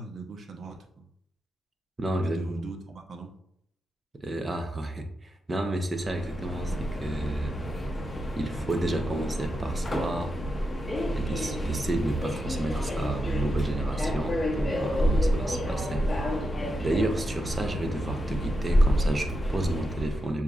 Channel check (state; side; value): normal; both; correlation 0.87